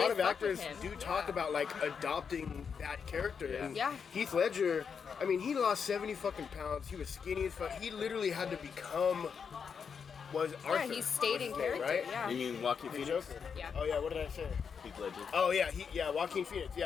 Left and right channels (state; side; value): quieter; right; 6.4 dB